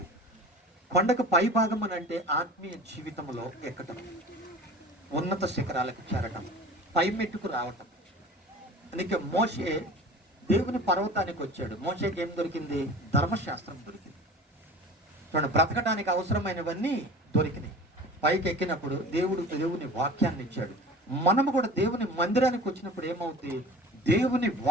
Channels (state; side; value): normal; both; correlation 0.40